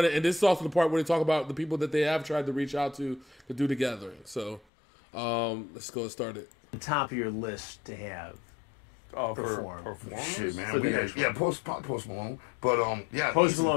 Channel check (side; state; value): right; drops out; at 4.6 s